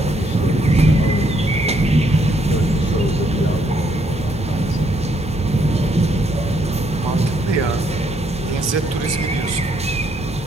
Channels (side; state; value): both; normal; correlation 0.72